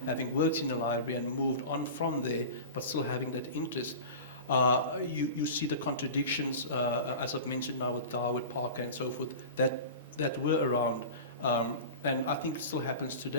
having worked in a library and moved on from there, but still having that interest. You see the contradictions, as I've mentioned now with Darwood, Parker, and so forth, that were around. And I think it still happens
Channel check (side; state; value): both; inverted; correlation -0.32